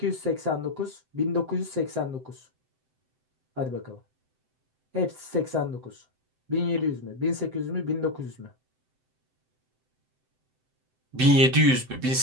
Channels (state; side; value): late; left; 7.8 ms